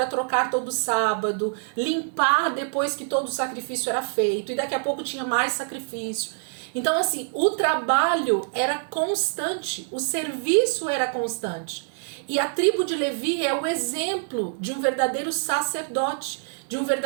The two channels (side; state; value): left; silent; 62 dB below the other